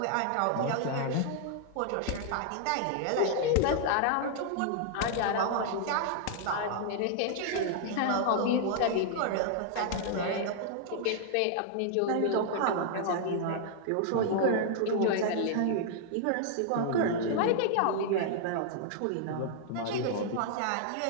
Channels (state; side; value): different; both; correlation -0.01